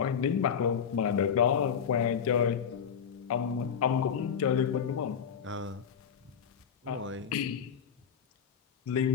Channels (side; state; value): right; quieter; 7.5 dB